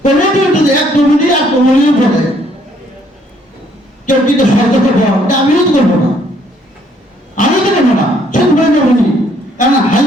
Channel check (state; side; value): normal; both; correlation 0.65